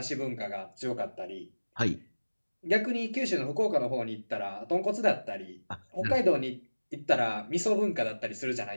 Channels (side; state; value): both; inverted; correlation -1.00